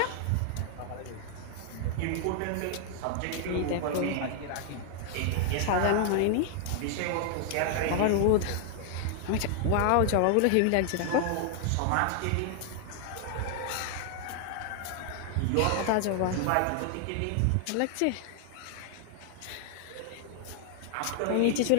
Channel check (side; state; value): both; different; correlation 0.00